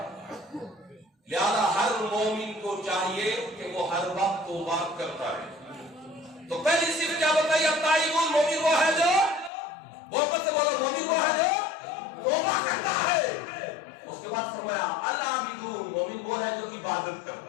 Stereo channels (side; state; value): right; drops out; at 9.5 s